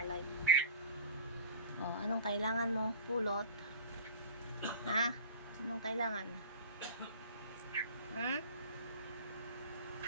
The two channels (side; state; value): both; inverted; correlation -0.37